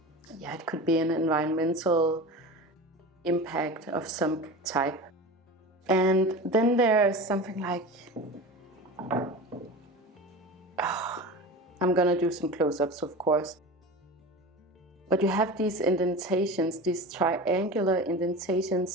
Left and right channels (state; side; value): normal; both; correlation 0.31